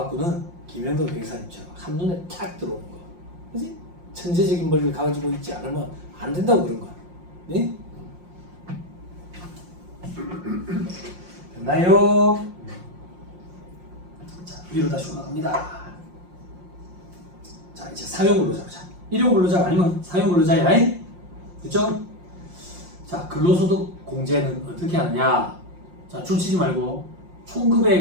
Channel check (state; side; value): late; left; 5.6 ms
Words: 김현도 변호사님처럼 한눈에 탁 들어오는 거. 그지? 천재적인 머리를 가지고 있지 않으면 안 된다고 그런 거야. 네? 됐나요? 자, 위로 다시 올라갑니다. 자, 이제 상용 근로자보자. 일용 근로자가 아니면 상용 근로자야. 그쵸? 자, 근로소득 공제는 어떻게 하느냐? 자, 줄치지 말고